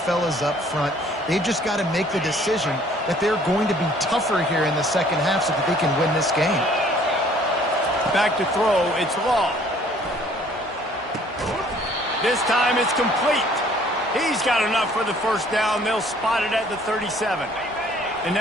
up front. They've just got to make the decision that they're going to be tougher here in the second half so that they can win this game. Back to throw, it's Law. This time it's complete. He's got enough for the first down. They'll spot it at the 37. And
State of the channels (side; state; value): both; normal; correlation 0.57